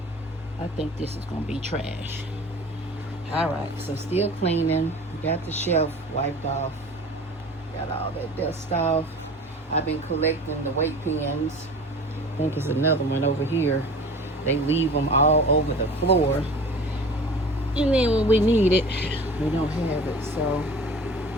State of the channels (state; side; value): normal; both; correlation 0.40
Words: I think this is gonna be trash. All right, so still cleaning. Got the shelf wiped off. Got all that dust off. I've been collecting the weight pens. I think there's another one over here. They leave them all over the floor. And then when we need it, we don't have it. So